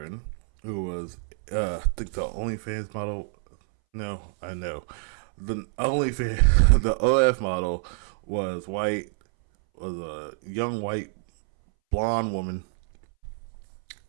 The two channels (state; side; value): silent; left; 60 dB below the other